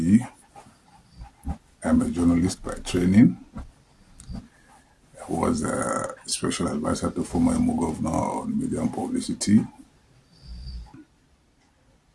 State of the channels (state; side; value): identical; both; correlation 1.00